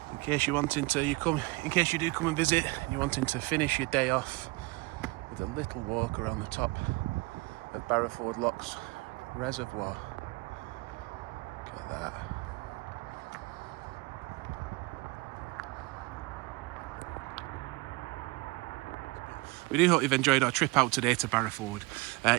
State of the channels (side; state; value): left; quieter; 24.2 dB